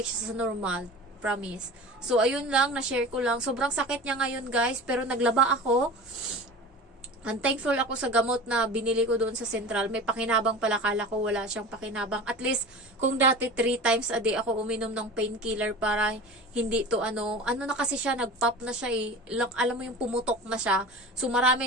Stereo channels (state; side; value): normal; both; correlation 0.35